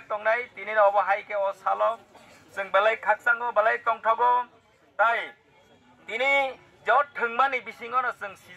tongnai tini no obahai ke o salo जों balai khaksango balai tongthago tai tini jot thangmani bisingono जों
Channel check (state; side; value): identical; both; correlation 1.00